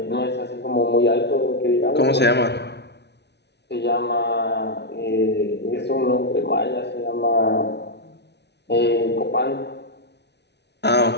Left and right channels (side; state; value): right; late; 0.50 ms